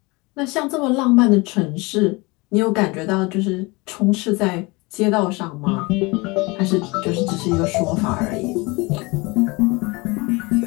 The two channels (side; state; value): right; quieter; 25.3 dB